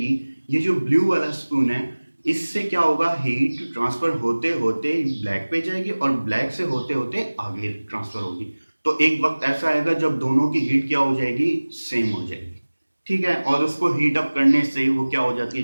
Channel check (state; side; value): inverted; both; correlation -1.00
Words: ये जो ब्लू वाला स्पून है, इससे क्या होगा, हीट ट्रांसफर होते होते ब्लैक पे जाएगी, और ब्लैक से होते होते आगे ट्रांसफर होगी। तो एक वक्त ऐसा आएगा जब दोनों की हीट क्या हो जाएगी, सेम हो जाएगी, ठीक है। और उसको हीट अप करने से वो क्या हो जाती